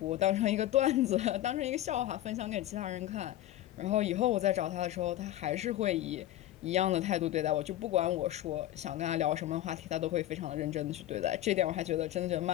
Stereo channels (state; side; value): quieter; right; 13.8 dB